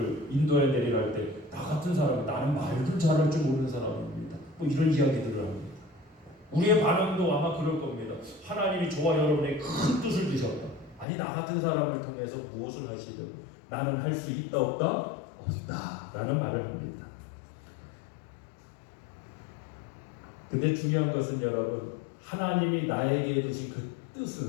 인도에 내리라 할 때 나 같은 사람은 나는 말도 잘할 줄 모르는 사람입니다. 뭐 이런 이야기들을 합니다. 우리의 반응도 아마 그럴 겁니다. 하나님이 저와 여러분에게 큰 뜻을 주셨다. 아니 나 같은 사람을 통해서 무엇을 하시려고? 나는 할 수 있다 없다? 없다 라는 말을 합니다. 근데 중요한 것은 여러분, 하나님이 나에게 주신 그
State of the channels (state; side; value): drops out; right; at 11.1 s